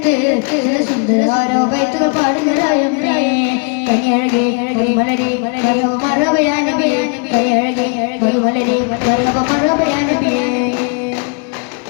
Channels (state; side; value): quieter; right; 36.2 dB